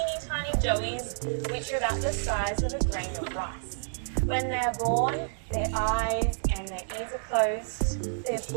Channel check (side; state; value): left; silent; digital silence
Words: tiny joeys, which are about the size of a grain of rice. When they're born, their eyes and their ears are closed, they're